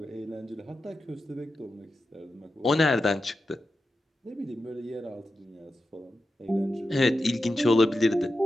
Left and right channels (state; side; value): normal; both; correlation 0.90